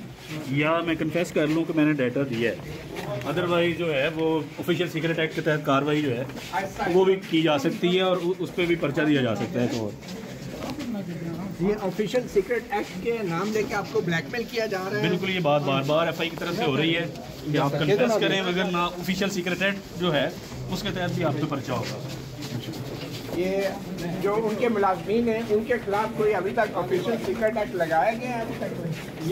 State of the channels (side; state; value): both; identical; correlation 1.00